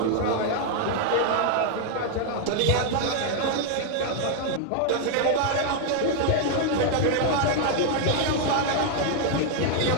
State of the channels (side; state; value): both; different; correlation 0.00